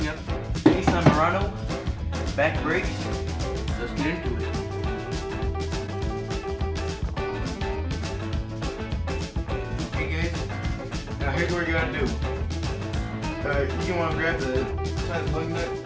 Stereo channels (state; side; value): identical; both; correlation 1.00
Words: up Nissan Murano back brakes. Let's get into it. Okay guys, now here's what you gotta do. You want to grab the size lug nut